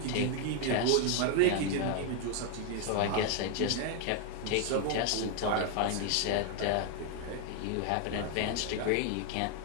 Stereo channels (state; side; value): different; both; correlation 0.01